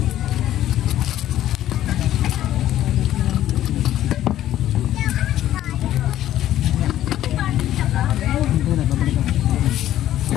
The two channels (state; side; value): quieter; right; 12.7 dB